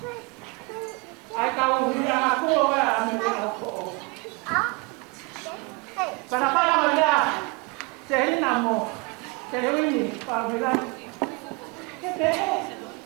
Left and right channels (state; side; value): quieter; left; 28.2 dB